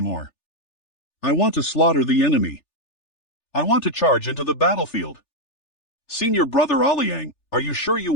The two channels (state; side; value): late; right; 3.4 ms